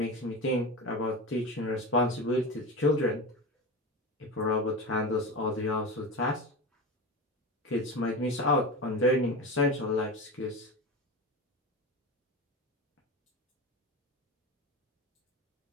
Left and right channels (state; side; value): normal; both; correlation 0.25